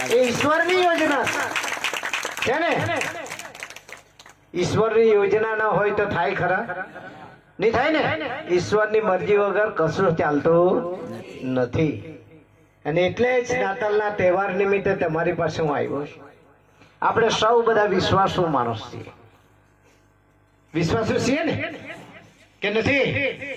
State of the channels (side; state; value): both; identical; correlation 1.00